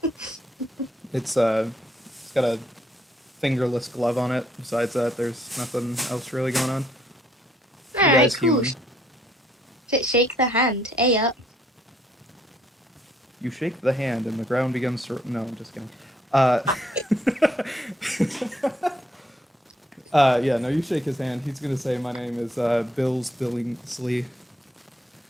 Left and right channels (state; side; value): normal; both; correlation 0.69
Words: It's got a fingerless glove on it. Besides that, there's nothing else really going on. The Alright, guy's cool. human. Shake the hand. Hey up. You shake the hand, and the ground begins to. No, I'm just kidding. Yeah, no, you shake his hand. He's gonna say, "My name is Bill Billingsley."